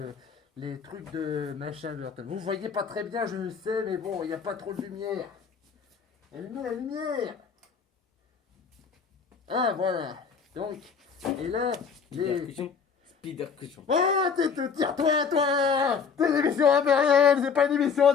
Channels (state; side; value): quieter; right; 6.0 dB